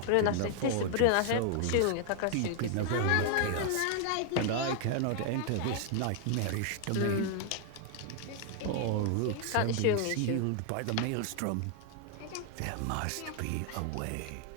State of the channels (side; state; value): both; different; correlation 0.00